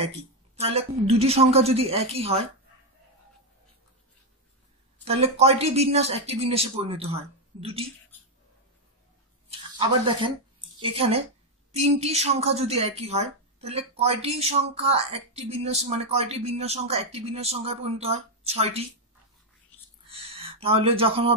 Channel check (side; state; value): both; normal; correlation 0.04